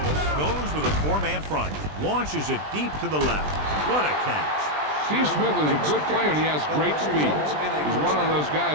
goes with a 4-man front. Launches it deep to the left. What a catch. Steve Smith is a good player, and he has great speed. He's one of those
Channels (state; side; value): late; left; 20 ms